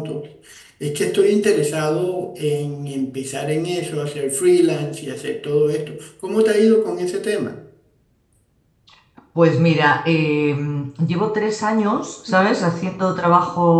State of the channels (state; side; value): identical; both; correlation 1.00